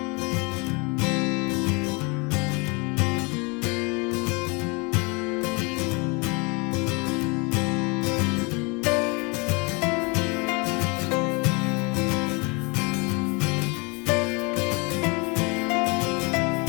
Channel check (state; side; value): quieter; right; 29.7 dB